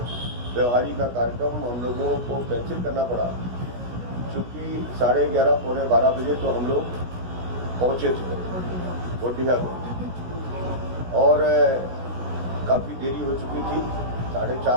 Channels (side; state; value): left; late; 16 ms